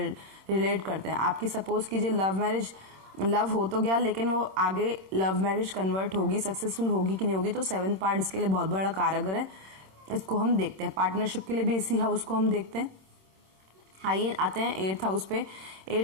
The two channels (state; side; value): late; left; 26 ms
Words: करते हैं। आपकी सपोज कीजिए लव मैरिज, लव हो तो गया, लेकिन वो आगे लव मैरिज कन्वर्ट होगी, सक्सेसफुल होगी कि नहीं होगी, तो 7th पार्ट इसके लिए बहुत बड़ा कारगर है, इसको हम देखते हैं। पार्टनरशिप के लिए भी इसी हाउस को हम देखते हैं। आइए आते हैं 8th हाउस पे।